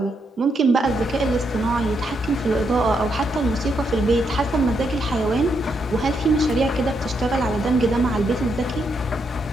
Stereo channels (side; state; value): both; normal; correlation 0.79